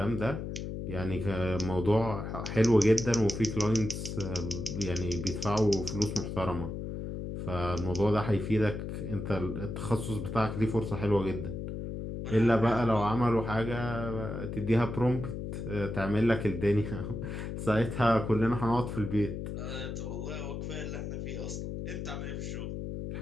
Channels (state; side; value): noise; left; hum, 5 dB below the sound